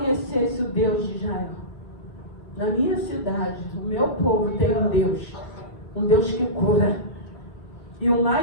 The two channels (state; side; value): late; right; 5.6 ms